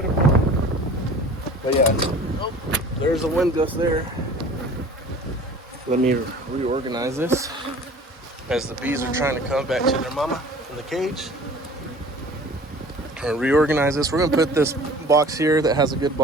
but yeah, oh, there's a wind gust there. Let me reorganize this as the bees are trying to come back to their mama in the cage. And reorganize this. We're gonna put this box here that has a good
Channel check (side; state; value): both; normal; correlation 0.45